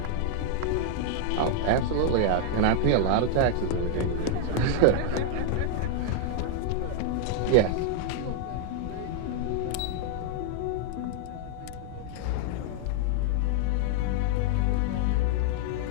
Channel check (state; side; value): different; both; correlation 0.00